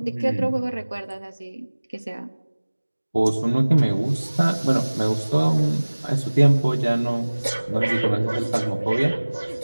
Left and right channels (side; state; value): both; inverted; correlation -1.00